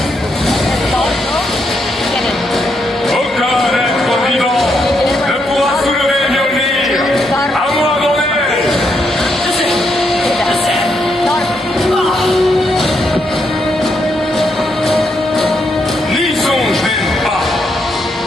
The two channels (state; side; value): normal; both; correlation 0.78